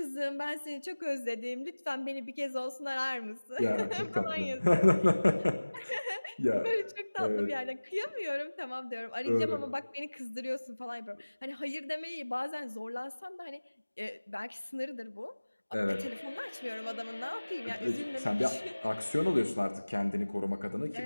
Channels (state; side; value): inverted; both; correlation -1.00